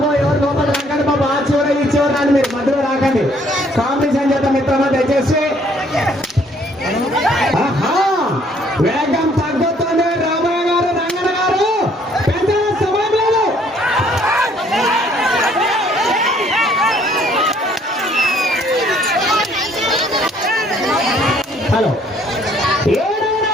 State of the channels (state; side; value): normal; both; correlation 0.62